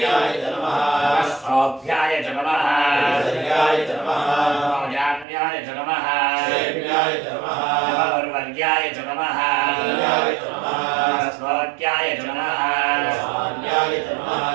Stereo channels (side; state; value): left; drops out; at 5.2 s